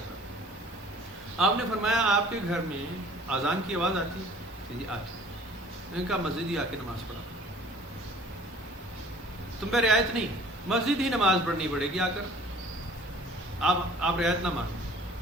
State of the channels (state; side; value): normal; both; correlation 0.51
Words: آپ نے فرمایا آپ کے گھر میں اذان کی آواز آتی کہ جی آتی. میں نے کہا مسجد ہی آ کے نماز پڑھا, تم پہ رعایت نہیں, مسجد ہی نماز پڑھنی پڑے گی آ کر. آپ رعایت نہ مانو.